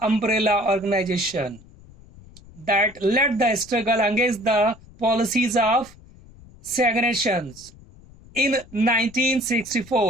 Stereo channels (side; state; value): left; noise; rumble, 23 dB below the sound